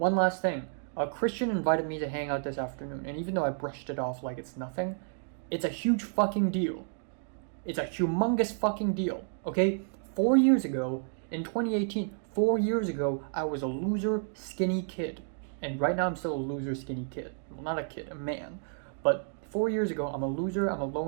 last thing. Cristian invited me to hang out this afternoon, and even though I brushed it off like it's nothing, it's a huge fucking deal. It's a humongous fucking deal, okay? 4 years ago, in 2018, 4 years ago, I was a loser, skinny kid. And right now I'm still a loser skinny kid. Well, not a kid, a man. But 4 years ago, I'm a loser, I'm a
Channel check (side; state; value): left; silent; digital silence